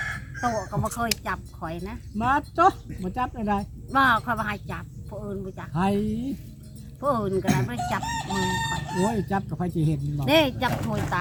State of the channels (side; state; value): both; identical; correlation 1.00